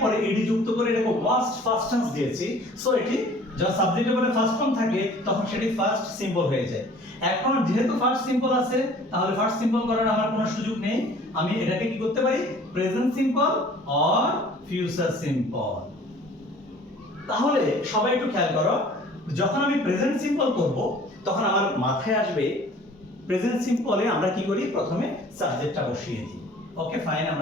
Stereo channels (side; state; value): both; normal; correlation 0.50